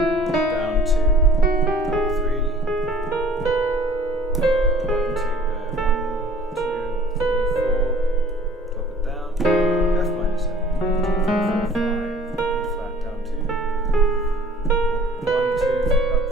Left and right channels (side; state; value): both; normal; correlation 0.52